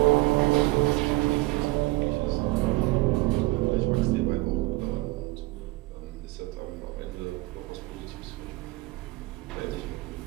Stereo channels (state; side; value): quieter; left; 20.7 dB